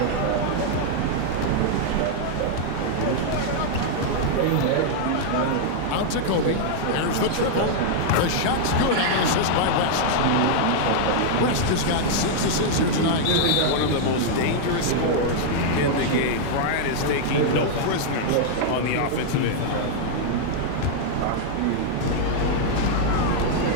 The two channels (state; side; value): different; both; correlation -0.01